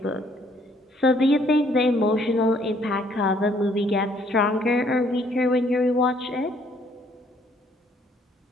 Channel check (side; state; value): both; normal; correlation 0.65